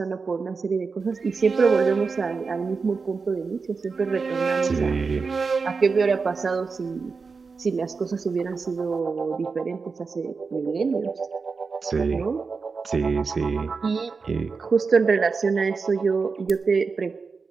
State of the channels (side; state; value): left; quieter; 4.8 dB